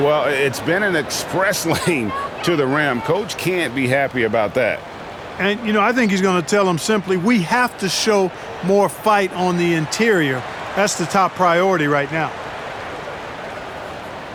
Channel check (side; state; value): both; identical; correlation 1.00